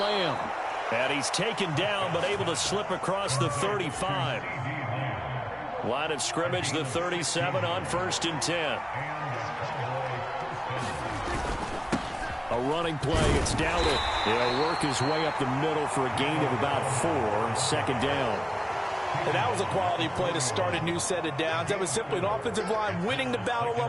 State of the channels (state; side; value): identical; both; correlation 1.00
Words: And he's taken down but able to slip across the 35. Line of scrimmage, the 37 on 1st and 10. A running play, it's Dowdle. He'll work his way up the middle for a gain of about 4, second down. And that was a quality play to start a new set of downs. That was simply an offensive line winning the battle